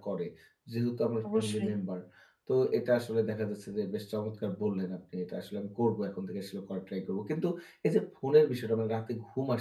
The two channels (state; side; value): identical; both; correlation 1.00